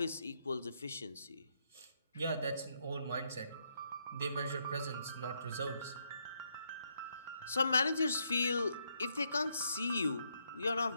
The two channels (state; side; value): inverted; both; correlation -0.76